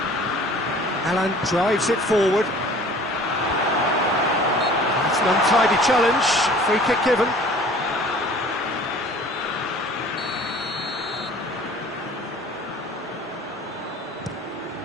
Alan drives it forward. It's an untidy challenge. Free kick given.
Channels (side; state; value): both; normal; correlation 0.48